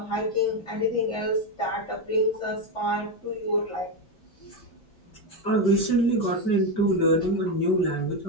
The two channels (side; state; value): right; late; 5.2 ms